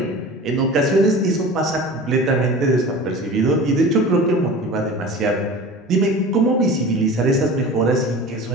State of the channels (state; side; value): normal; both; correlation 0.36